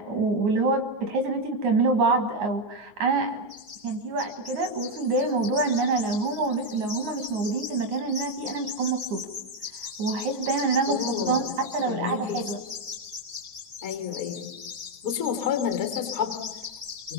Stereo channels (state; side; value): late; left; 9.5 ms